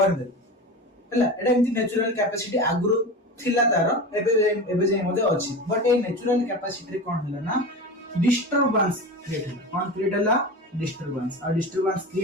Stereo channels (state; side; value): normal; both; correlation 0.28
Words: दे हैला एटा एंती नेचुरल कैपेसिटी आगुरो थिला तार एबे जे मध्ये अछि बट ए नेचुरल कैपेसिटी रे कोन हला ना डिस्टरबेंस क्रिएट हला कोन क्रिएट हला डिस्टरबेंस और डिस्टरबेंस